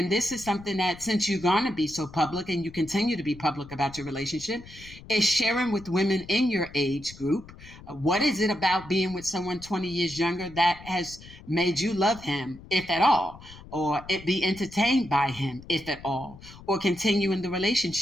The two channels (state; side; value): noise; left; rumble, 18 dB below the sound